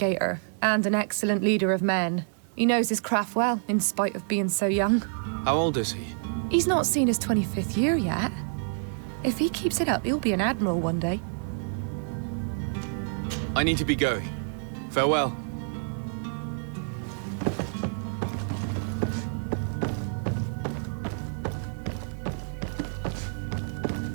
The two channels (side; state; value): left; silent; digital silence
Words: and an excellent leader of men. He knows his craft well, in spite of being so young. How old is he? He's not seen his 25th year yet. If he keeps it up, he'll be an admiral one day. I need to be going. Farewell.